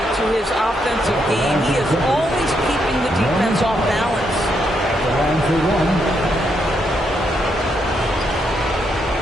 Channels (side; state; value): both; normal; correlation 0.78